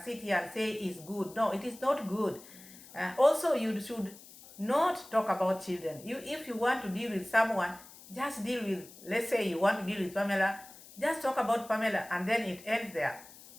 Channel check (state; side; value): noise; left; hiss, 19 dB below the sound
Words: sit here and say is good. No, it is not good. Also, you should not talk about children. If you want to deal with someone, just deal with, let's say you want to deal with Pamela, just talk about Pamela and then it ends there.